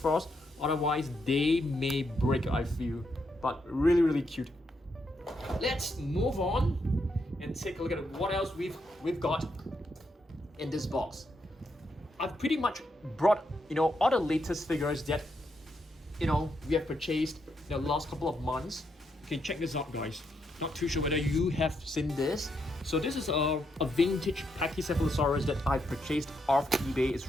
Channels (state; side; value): normal; both; correlation 0.79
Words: otherwise they may break, I feel. But really, really cute. Let's move on and take a look at what else we've got in this box. I've pretty much brought, all the latest figures that, we have purchased in the last couple of months. Okay, check this out, guys. Not too sure whether you have seen this. So this is a vintage Pachycephalosaurus that I purchased off eBay. It's